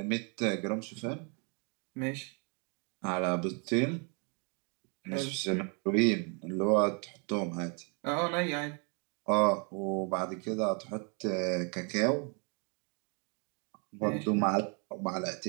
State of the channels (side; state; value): left; quieter; 36.1 dB